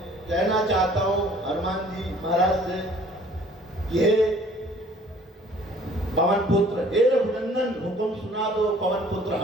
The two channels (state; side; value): normal; both; correlation 0.54